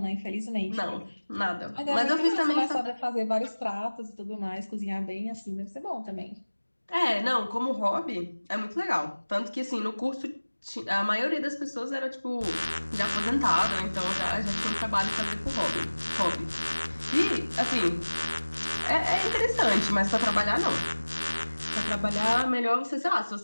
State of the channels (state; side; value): inverted; both; correlation -1.00